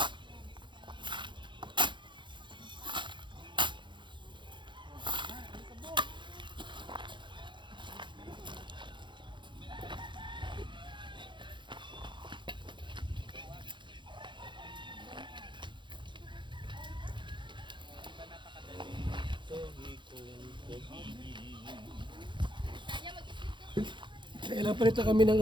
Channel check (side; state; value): left; late; 0.23 ms